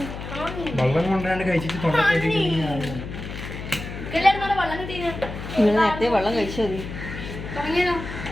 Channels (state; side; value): noise; left; hum, 9 dB below the sound